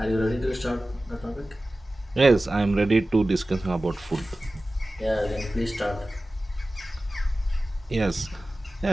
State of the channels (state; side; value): normal; both; correlation 0.96